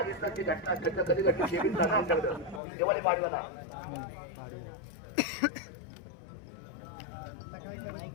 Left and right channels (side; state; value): right; drops out; at 2.6 s